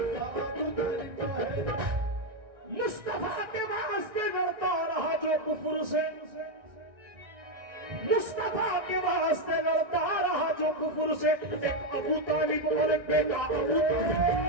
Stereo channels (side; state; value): left; late; 1.5 ms